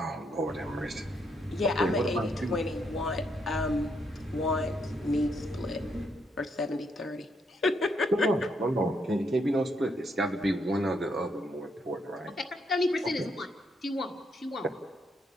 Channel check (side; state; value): both; normal; correlation 0.76